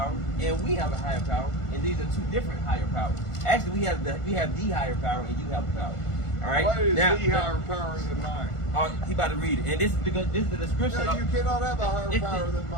and we have a higher power, and these are two different higher powers. Actually, we have the higher power, and you have the power. All right. What is now, the higher power than mine? He about to read it, and this is the description. No, you cannot have a higher power than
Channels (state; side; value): late; right; 1.5 ms